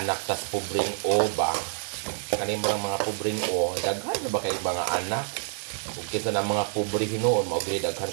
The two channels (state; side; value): silent; left; digital silence